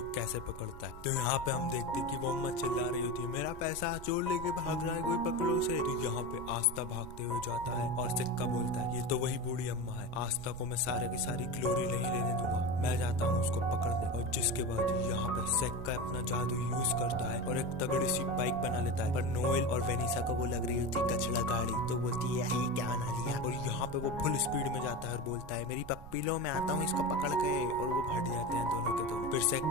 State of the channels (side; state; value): right; noise; rumble, 14 dB below the sound